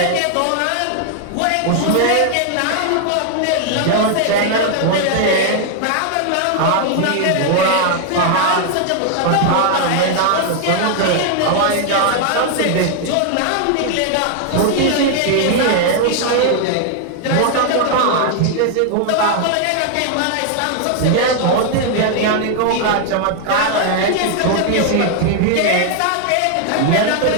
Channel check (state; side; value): different; both; correlation 0.00